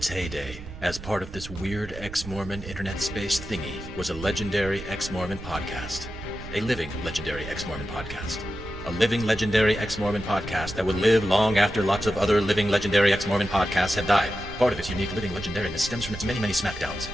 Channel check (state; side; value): noise; right; rumble, 13 dB below the sound